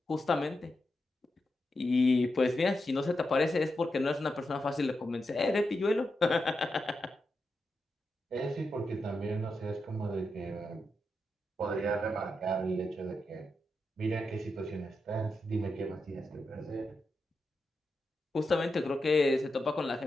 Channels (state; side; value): normal; both; correlation 0.87